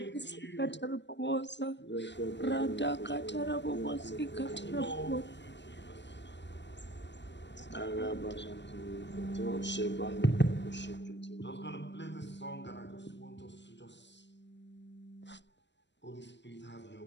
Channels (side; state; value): right; late; 0.52 ms